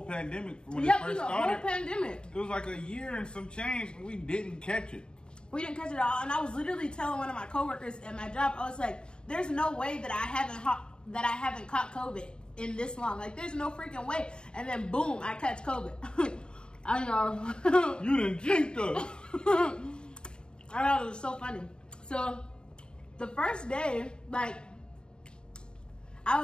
pandemic, when it first started. Whole pandemic. It was like a year and some change, and we didn't catch it. We didn't catch it all. And I was literally telling one of my coworkers at my job, I was like, there's no way that I haven't caught COVID in this long. Like, there's no freaking way. And then, boom, I catch COVID. I know. You done jinxed us. I know, it was so funny. So, the first day, like, I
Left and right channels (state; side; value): late; right; 0.050 ms